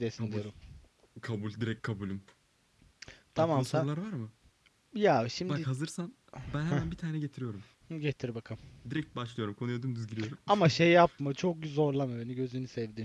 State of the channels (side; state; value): both; identical; correlation 1.00